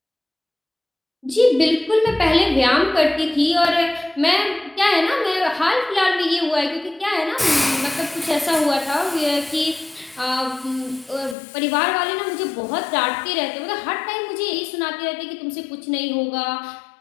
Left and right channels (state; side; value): drops out; right; at 11.4 s